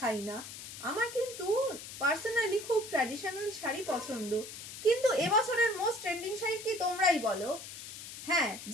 না। আমার কিন্তু পার্সোনালি খুব ট্র্যাডিশনাল শাড়ি পছন্দ, কিন্তু এবছরের মোস্ট ট্রেন্ডিং শাড়ি কি তোমরাই বলো। হ্যাঁ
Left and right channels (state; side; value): noise; left; hiss, 11 dB below the sound